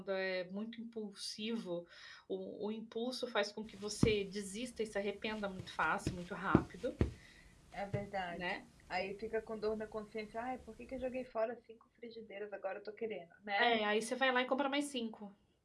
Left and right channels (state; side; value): identical; both; correlation 1.00